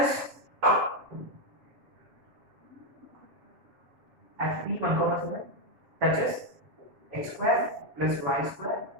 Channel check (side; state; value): left; late; 7.4 ms